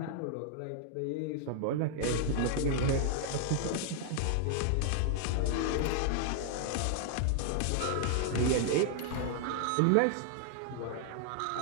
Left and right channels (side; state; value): both; different; correlation 0.00